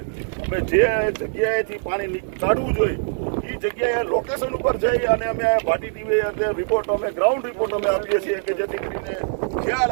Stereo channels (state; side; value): silent; left; 64 dB below the other